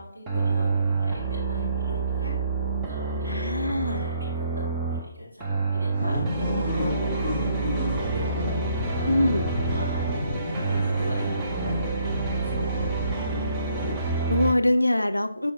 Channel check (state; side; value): inverted; both; correlation -0.69